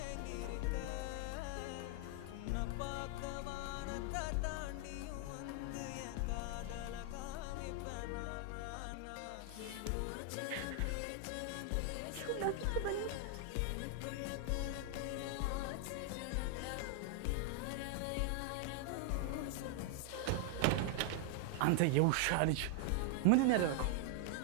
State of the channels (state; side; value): different; both; correlation 0.00